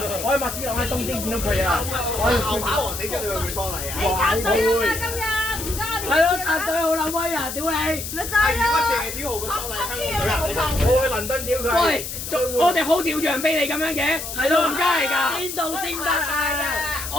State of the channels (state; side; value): noise; left; hiss, 7 dB below the sound